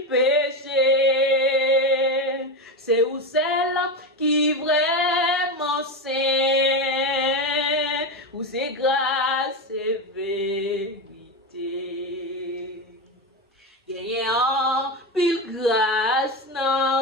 péché. C'est où celle qui vraiment sait, où c'est grâce et vérité. Gagné en pile grâce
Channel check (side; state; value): both; normal; correlation 0.16